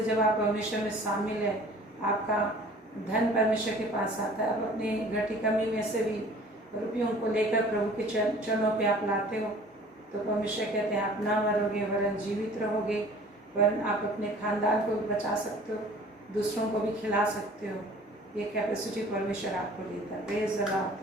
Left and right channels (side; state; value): both; normal; correlation 0.48